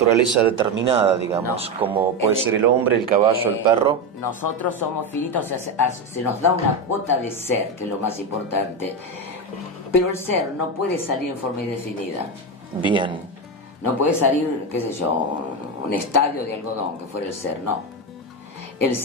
determinada, digamos, No. como puede ser el hombre, el caballo, el perro. Nosotros somos finitos, o sea, se nos da una cuota de ser, que es lo más importante. Pero el ser no puede salir en forma indefinida. Bien. No puede salir, qué sé yo, un estadio de algodón, que fuera el ser, no. El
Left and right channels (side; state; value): both; normal; correlation 0.14